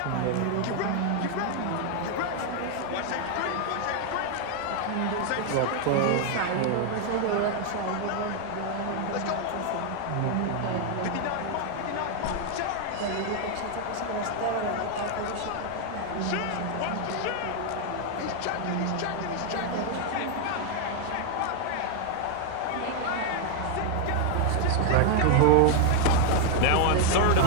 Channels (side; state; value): both; different; correlation 0.00